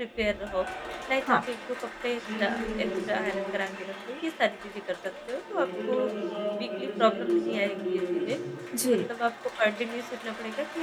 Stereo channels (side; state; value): both; identical; correlation 1.00